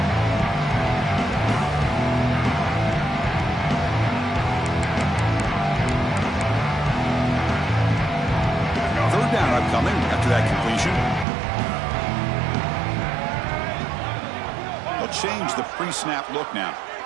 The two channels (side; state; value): left; drops out; at 11.2 s